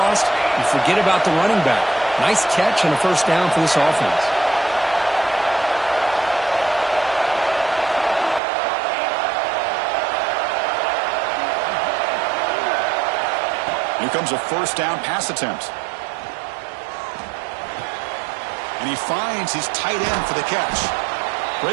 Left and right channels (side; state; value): left; drops out; at 8.4 s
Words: You forget about the running back. Nice catch and a 1st down for this offense. Here comes a 1st down pass attempt. And he finds his tight end for the catch.